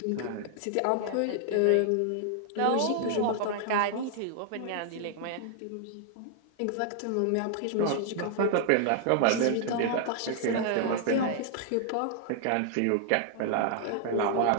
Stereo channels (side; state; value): both; different; correlation 0.00